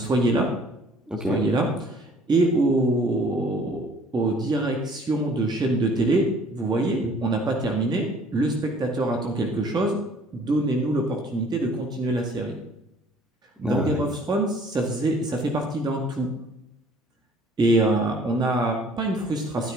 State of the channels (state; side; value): normal; both; correlation 0.55